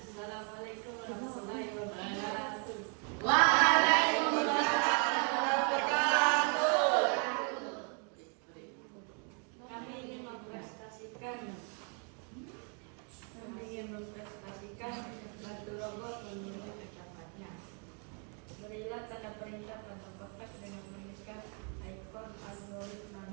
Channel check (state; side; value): quieter; left; 38.0 dB